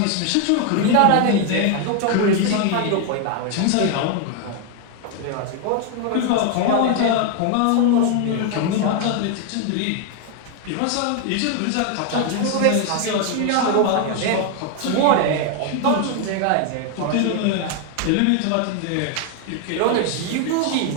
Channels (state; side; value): different; both; correlation 0.01